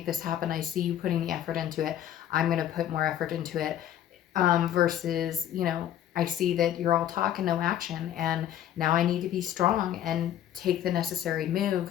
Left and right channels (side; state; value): right; quieter; 11.2 dB